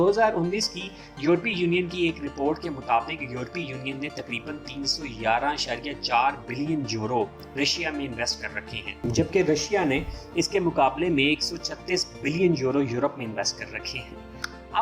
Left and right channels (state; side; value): identical; both; correlation 1.00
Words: کی یورپی یونین کی ایک رپورٹ کے مطابق یورپی یونین نے تقریباً 311.4 بلین یورو رشیا میں انویسٹ کر رکھے ہیں، جبکہ رشیا نے اس کے مقابلے میں 136 بلین یورو یورپ میں انویسٹ کر رکھے ہیں۔